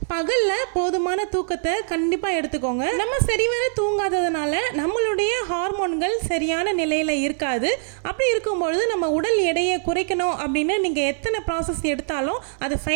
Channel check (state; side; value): silent; left; digital silence